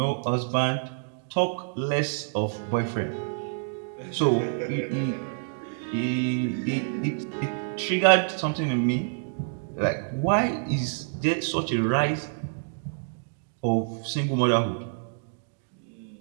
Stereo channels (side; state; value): left; silent; digital silence